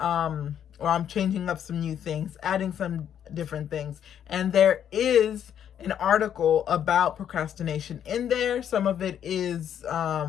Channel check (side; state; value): right; quieter; 9.4 dB